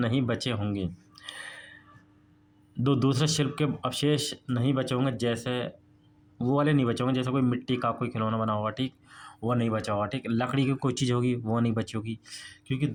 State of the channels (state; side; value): identical; both; correlation 1.00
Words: बचे होंगे। दूसरे शिल्प के अवशेष नहीं बचे होंगे, जैसे वो वाले नहीं बचे होंगे, जैसे कोई मिट्टी का कोई खिलौना बना होगा, ठीक, वो नहीं बचा होगा, ठीक। लकड़ी की कोई चीज़ होगी, वो नहीं बची होगी, क्योंकि